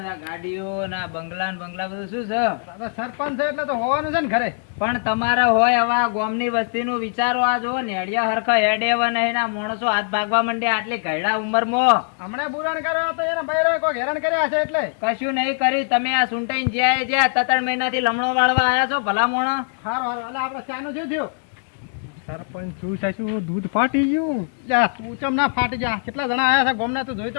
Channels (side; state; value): right; silent; 64 dB below the other